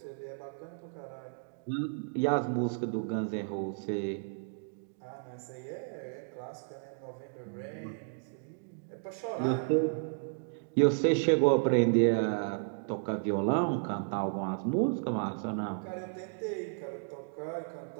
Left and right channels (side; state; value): left; silent; digital silence